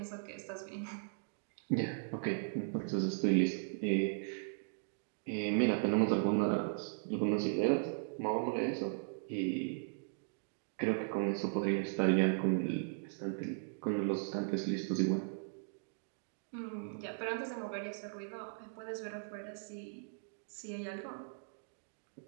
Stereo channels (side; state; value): left; silent; digital silence